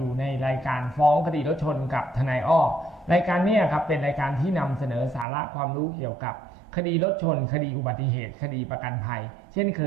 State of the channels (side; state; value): left; drops out; at 5.2 s